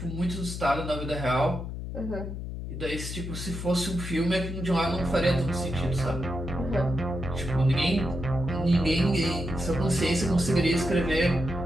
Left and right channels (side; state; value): left; noise; hum, 6 dB below the sound